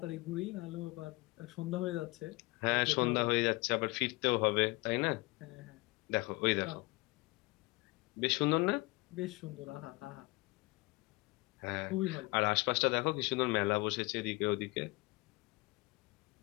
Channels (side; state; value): right; quieter; 23.8 dB